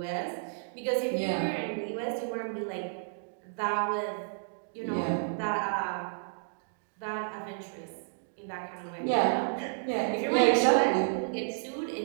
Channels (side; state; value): left; silent; digital silence